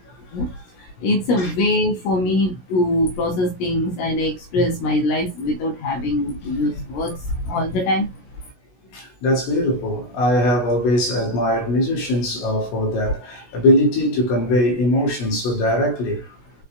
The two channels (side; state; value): right; late; 17 ms